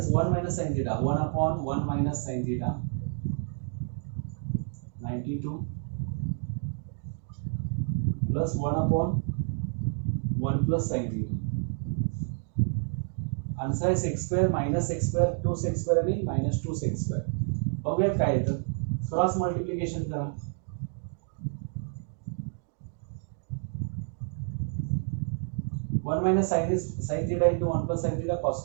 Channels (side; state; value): left; silent; 55 dB below the other